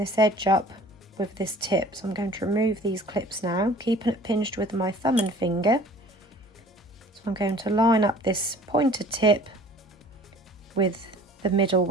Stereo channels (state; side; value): normal; both; correlation 0.48